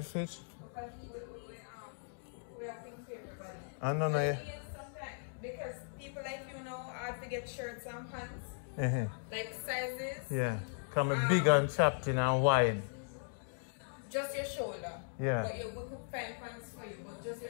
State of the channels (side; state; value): right; silent; digital silence